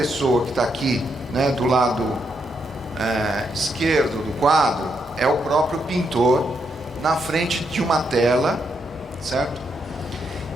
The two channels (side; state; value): both; normal; correlation 0.79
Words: que está aqui, né, do lado esquerdo do quadro, é o próprio pintor na frente de uma tela, certo?